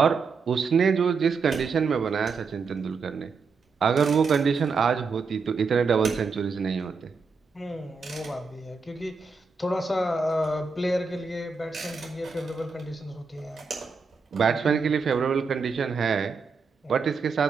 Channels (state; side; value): quieter; left; 4.9 dB